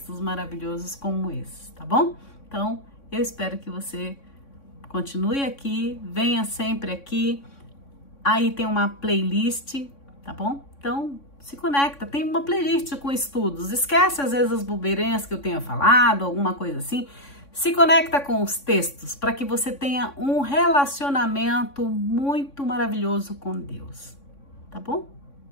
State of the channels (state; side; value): late; right; 3.6 ms